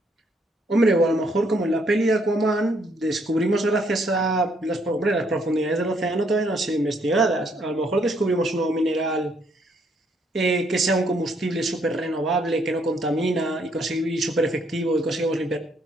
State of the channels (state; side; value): normal; both; correlation 0.70